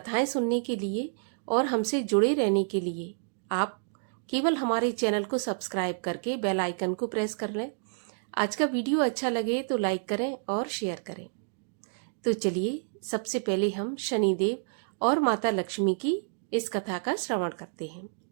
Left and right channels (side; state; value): left; silent; digital silence